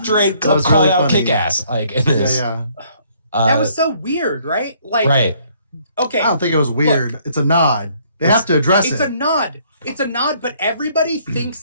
Straight call really out kick ass. Like in this. That was so weird, right? Like, right. Okay. I don't think it was weird. Look, it's a nod. They have to address it. It's a nod. It's a nod, but everybody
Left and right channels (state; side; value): inverted; both; correlation -0.64